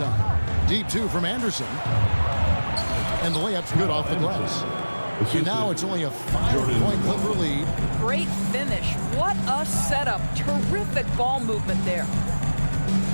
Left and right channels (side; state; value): both; inverted; correlation -1.00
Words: Deep 2 from Anderson. And the layup's good off the glass. And now it's only a 5-point Clipper lead. Great finish. What a setup. Terrific ball movement there.